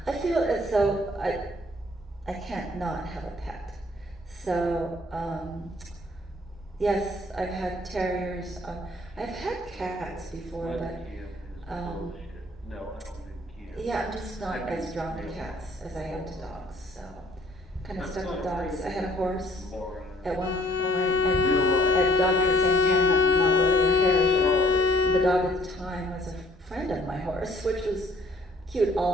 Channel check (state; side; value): normal; both; correlation 0.60